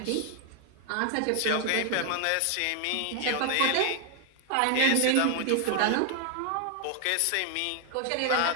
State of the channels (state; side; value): different; both; correlation 0.00